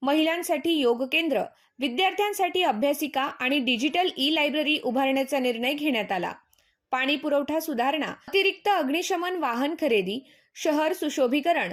महिलांसाठी योग केंद्र, विद्यार्थ्यांसाठी अभ्यासिका आणि डिजिटल ई-लायब्ररी उभारण्याचा निर्णय घेण्यात आला। पाणी पुरवठा सुधारणा, अतिरिक्त अग्निशमन वाहन खरेदी, शहर सुशोभीकरण,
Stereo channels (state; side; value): identical; both; correlation 1.00